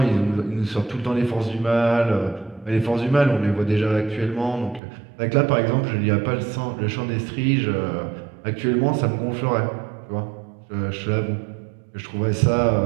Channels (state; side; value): drops out; left; at 4.8 s